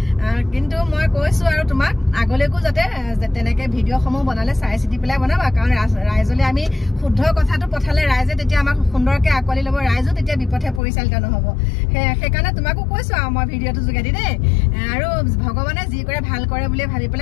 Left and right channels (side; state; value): right; drops out; at 10.8 s